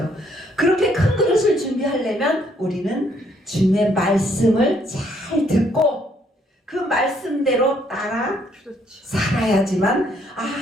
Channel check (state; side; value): normal; both; correlation 0.68